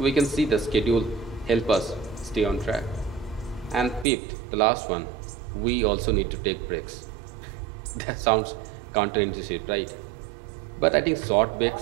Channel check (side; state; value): left; drops out; at 4.0 s